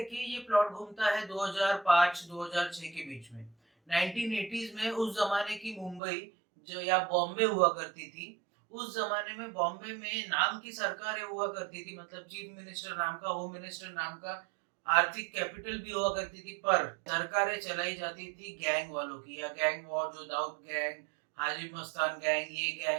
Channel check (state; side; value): drops out; left; at 6.0 s